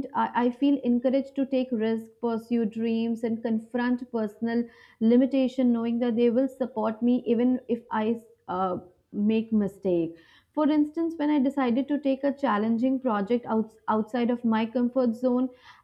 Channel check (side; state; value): both; identical; correlation 1.00